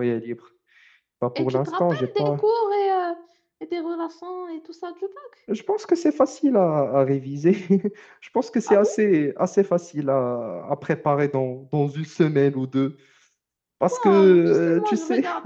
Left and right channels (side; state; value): both; identical; correlation 1.00